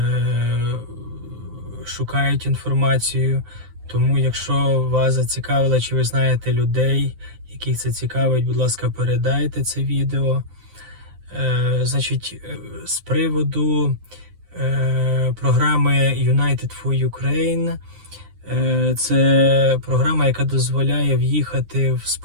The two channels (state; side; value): late; left; 9.7 ms